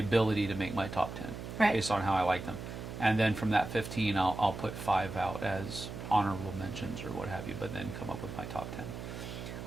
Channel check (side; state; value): right; noise; hum, 9 dB below the sound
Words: to make my top 10, right, based on how I like them. And then from that 15, I'll put 5 out as honorable mentions or what have you, but then come up with my top 10.